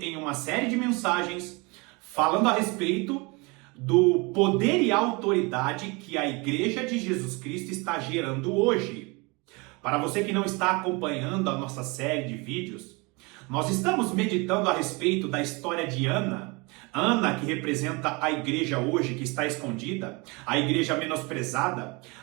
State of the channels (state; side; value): quieter; left; 27.6 dB